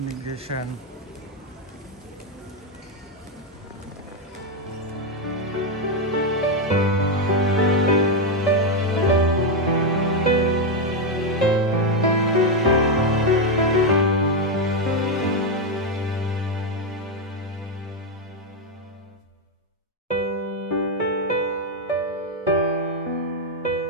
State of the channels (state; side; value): normal; both; correlation 0.04